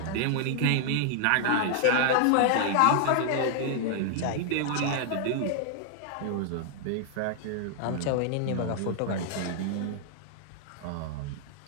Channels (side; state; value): both; different; correlation 0.00